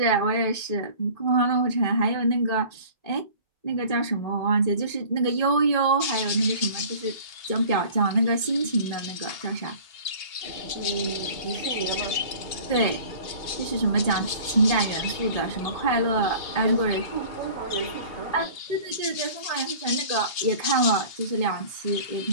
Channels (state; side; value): late; right; 2.8 ms